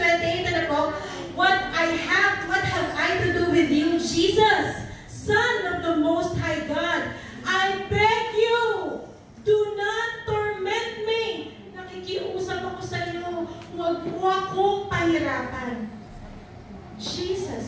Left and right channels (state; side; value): identical; both; correlation 1.00